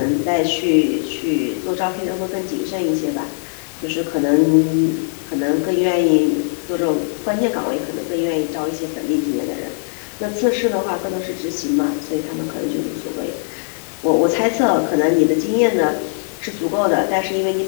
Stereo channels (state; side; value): silent; right; digital silence